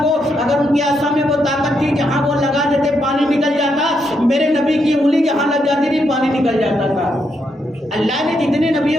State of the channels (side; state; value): both; normal; correlation 0.79